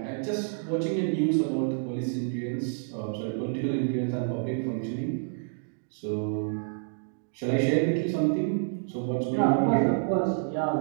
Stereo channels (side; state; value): left; silent; digital silence